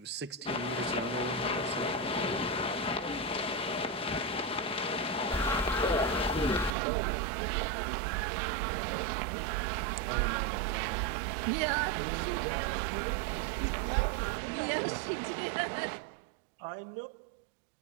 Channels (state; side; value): drops out; left; at 6.8 s